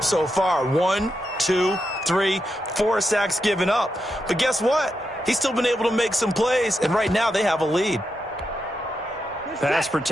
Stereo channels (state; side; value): normal; both; correlation 0.85